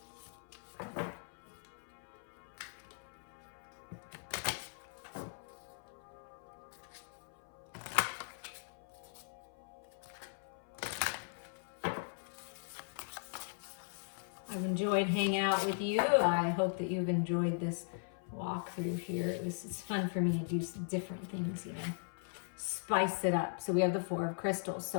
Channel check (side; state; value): right; silent; 52 dB below the other